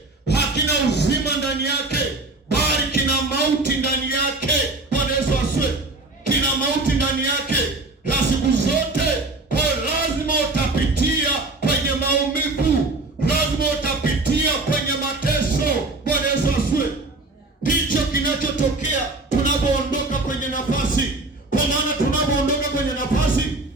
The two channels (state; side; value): quieter; left; 3.1 dB